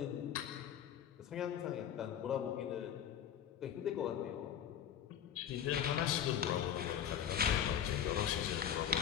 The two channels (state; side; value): quieter; right; 9.4 dB